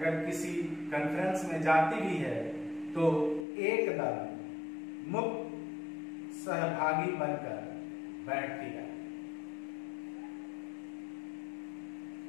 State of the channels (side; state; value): right; drops out; at 3.5 s